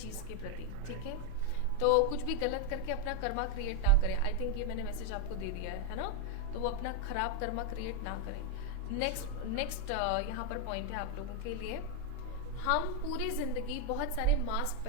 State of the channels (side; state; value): both; different; correlation 0.01